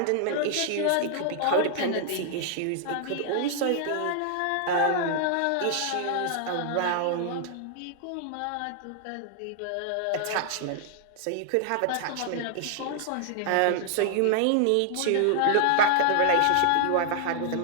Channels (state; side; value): different; both; correlation -0.01